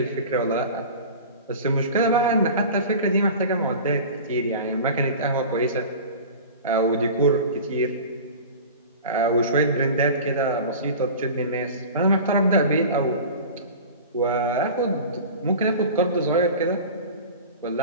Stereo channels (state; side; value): inverted; both; correlation -0.36